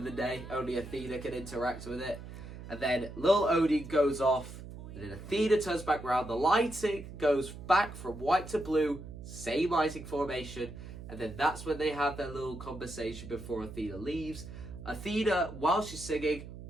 the day. Only Athena can interact with it. And then Lil Odie goes off. And then Athena turns back around. The lighting goes back from white to blue. Same lighting formation. And then that's when they have their little conversation before Athena leaves. Athena, while she's singing,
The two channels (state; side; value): noise; right; hum, 12 dB below the sound